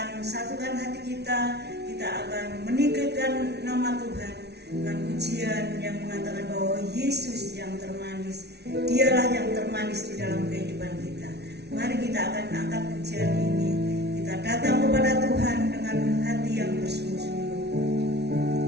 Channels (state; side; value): late; left; 0.49 ms